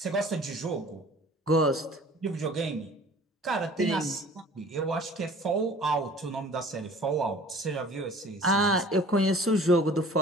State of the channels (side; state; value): both; normal; correlation 0.48